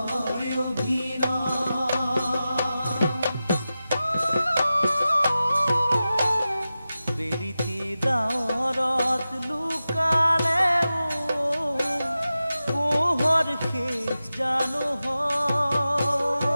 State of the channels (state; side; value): inverted; both; correlation -0.93